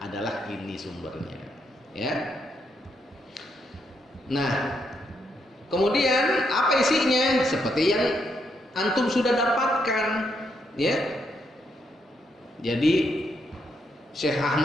adalah ini sumbernya, ya. Nah, kemudian apa isinya? Seperti yang antum sudah dapatkan, ya. Jadi Syekh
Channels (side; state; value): both; normal; correlation 0.78